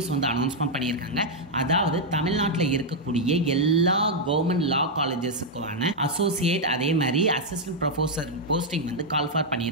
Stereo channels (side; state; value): both; normal; correlation -0.02